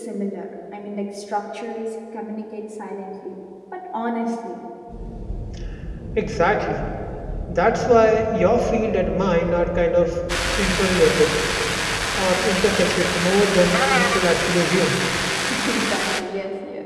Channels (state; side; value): identical; both; correlation 1.00